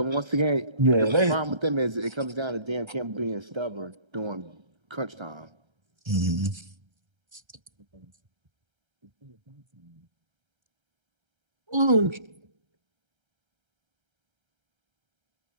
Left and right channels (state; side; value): late; left; 1.3 ms